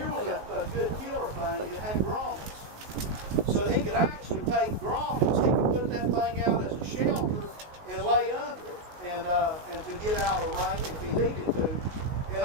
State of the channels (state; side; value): late; left; 19 ms